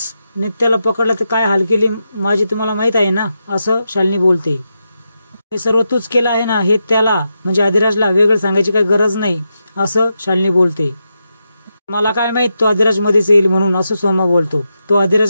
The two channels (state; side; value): inverted; both; correlation -0.86